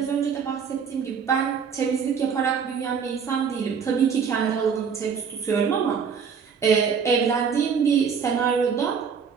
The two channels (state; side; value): quieter; left; 6.5 dB